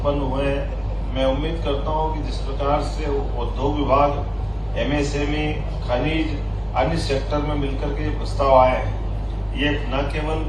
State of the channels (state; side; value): identical; both; correlation 1.00